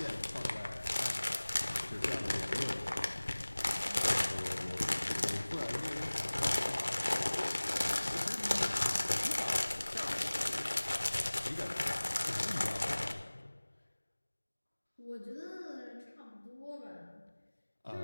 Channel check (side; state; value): both; inverted; correlation -1.00